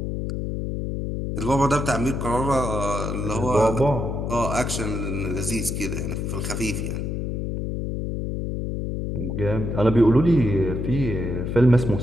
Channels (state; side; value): noise; left; hum, 3 dB below the sound